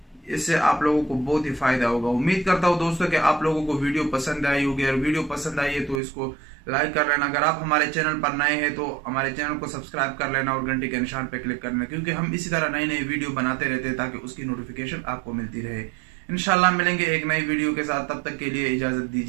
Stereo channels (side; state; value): left; drops out; at 6.0 s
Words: इससे आप लोगों को बहुत ही फायदा होगा। उम्मीद करता हूँ दोस्तों कि आप लोगों को वीडियो पसंद आई होगी, और वीडियो पसंद आई है तो इसको लाइक कर लेना। अगर आप हमारे चैनल पर नए हैं तो हमारे चैनल को सब्सक्राइब कर लेना और घंटी के निशान पर क्लिक करना, क्योंकि हम इसी तरह नई नई वीडियो बनाते रहते हैं ताकि उसकी नोटिफिकेशन आपको मिलती रहे। इंशाल्लाह मिलेंगे एक नई वीडियो के साथ, तब तक के लिए इजाजत